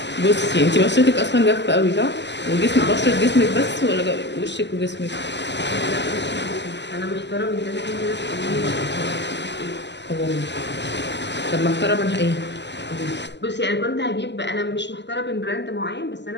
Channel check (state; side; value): late; right; 0.51 ms